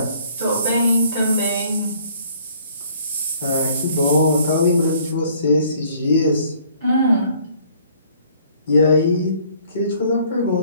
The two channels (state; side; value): inverted; both; correlation -0.59